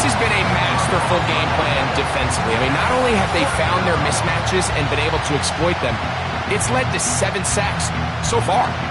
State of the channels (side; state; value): both; identical; correlation 1.00